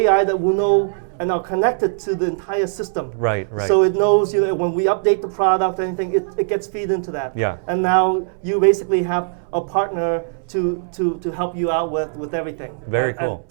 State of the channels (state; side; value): silent; left; 66 dB below the other